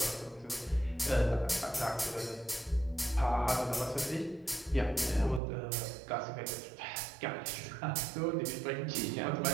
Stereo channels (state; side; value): drops out; left; at 5.4 s